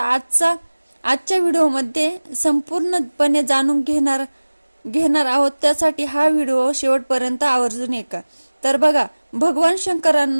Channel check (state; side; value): inverted; both; correlation -1.00